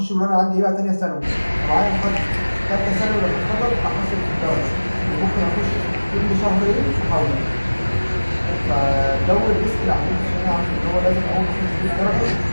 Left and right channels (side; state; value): both; inverted; correlation -1.00